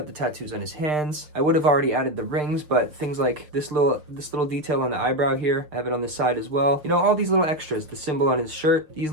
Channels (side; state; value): left; late; 6.8 ms